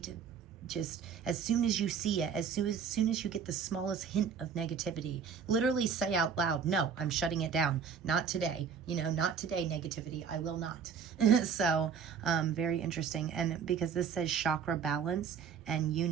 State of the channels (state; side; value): quieter; left; 6.9 dB